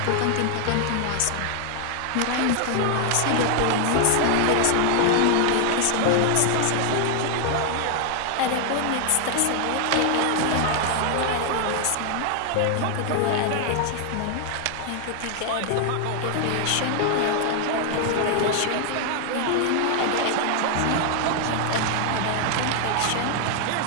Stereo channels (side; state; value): both; different; correlation 0.00